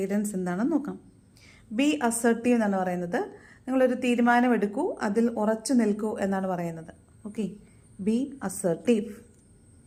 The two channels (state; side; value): identical; both; correlation 1.00